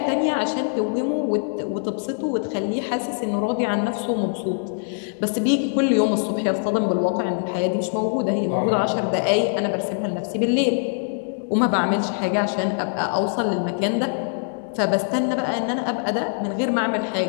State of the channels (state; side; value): silent; right; digital silence